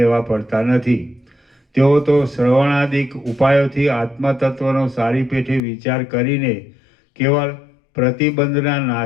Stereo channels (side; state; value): right; drops out; at 5.6 s